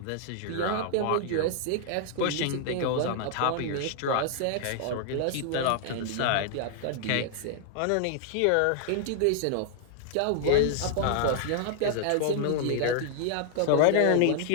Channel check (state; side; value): different; both; correlation -0.01